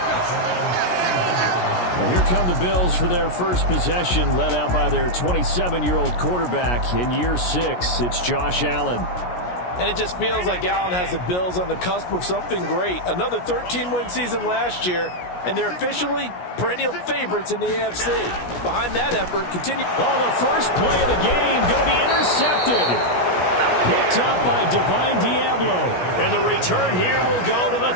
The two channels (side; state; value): right; late; 17 ms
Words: And here come the Bills for their first possession, led out by their 27-year-old quarterback in year 6. It's Josh Allen. And it just feels like Allen has the Bills on the cusp of something great. Another 13-win season last year, and they're officially perennial favorites in the AFC. Behind that effort, continue. Oh, the first play of the game going to be intercepted. Picked up by Divine Diablo. And the return here will go to the